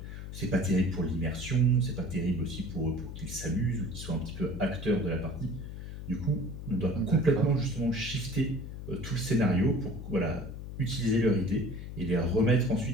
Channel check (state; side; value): noise; left; hum, 9 dB below the sound